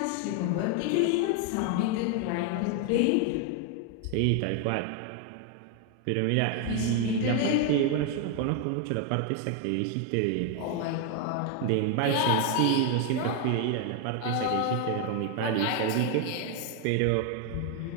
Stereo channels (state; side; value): different; both; correlation 0.01